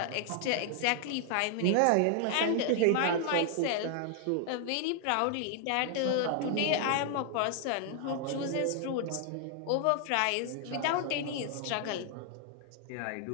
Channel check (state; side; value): different; both; correlation 0.00